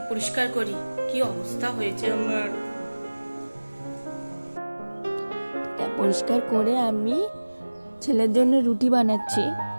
পরিষ্কার করি, কি অবস্থা হয়েছে আমার। পরিষ্কার করে আমি ছেলের জন্য রুটি বানাচ্ছি।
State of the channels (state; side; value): inverted; both; correlation -1.00